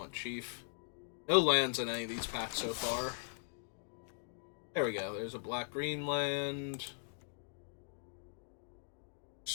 Chief. No lands in any of these packs so far. There we go. There's a black-green land.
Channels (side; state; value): right; silent; digital silence